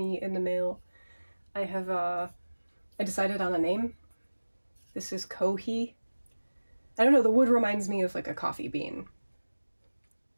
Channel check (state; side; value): inverted; both; correlation -1.00